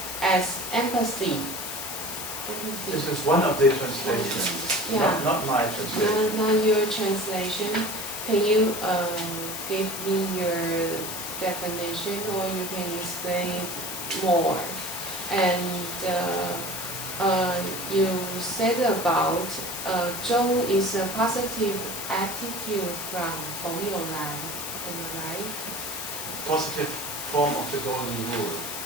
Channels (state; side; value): noise; left; hiss, 6 dB below the sound